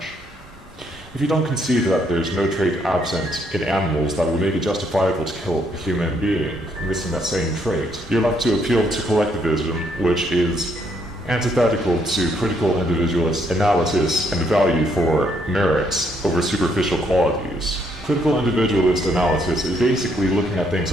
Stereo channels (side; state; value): both; normal; correlation 0.72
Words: If you don't concede that there's no trait absent in animals that would make it justifiable to kill a human being missing that same trait, you're left to appeal to collectivism, which is antithetical to critical individualist analysis and value for merits over superficial qualities. Critical individualist analysis is basically looking at things